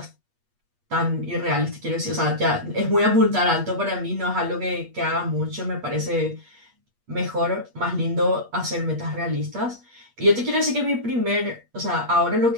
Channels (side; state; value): left; late; 8.4 ms